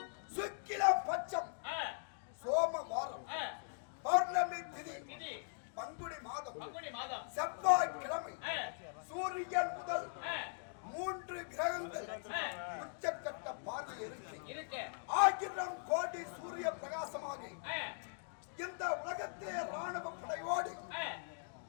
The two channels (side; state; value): right; silent; digital silence